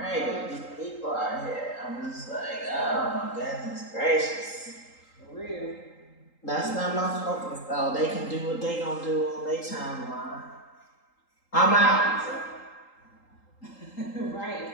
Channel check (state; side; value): late; right; 3.8 ms